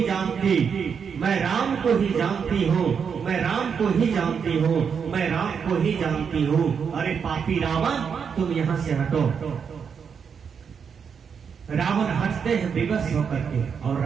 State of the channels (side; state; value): left; quieter; 6.6 dB